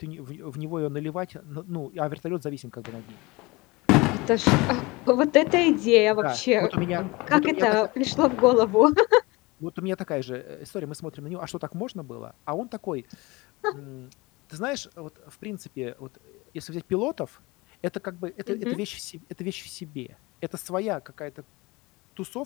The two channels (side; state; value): right; quieter; 23.6 dB